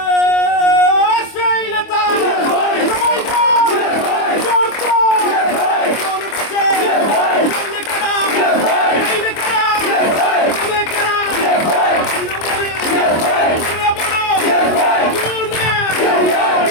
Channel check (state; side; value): late; right; 25 ms